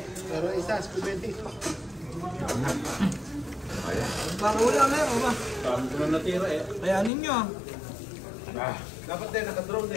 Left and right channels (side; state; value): right; drops out; at 7.1 s